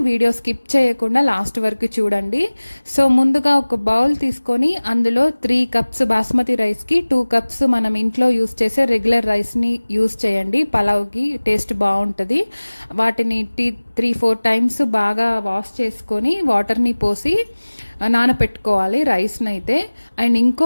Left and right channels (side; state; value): both; inverted; correlation -1.00